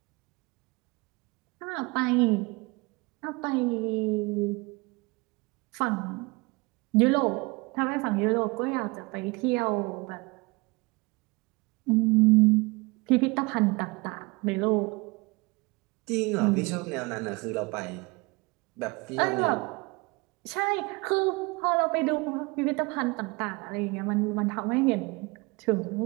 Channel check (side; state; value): left; quieter; 26.0 dB